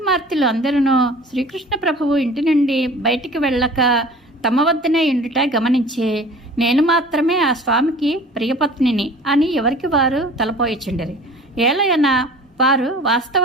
అందరూ శ్రీకృష్ణ ప్రభువు ఇంటి నుండి బయటికి వెళ్ళక తమ వద్దనే ఉండుట గమనించి, నేను మాత్రమే ఆ స్వామికి ప్రియపత్నిని అని ఎవరికి వారు తలపోయిచుండిరి. ఏలయన వారు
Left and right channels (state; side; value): normal; both; correlation 0.44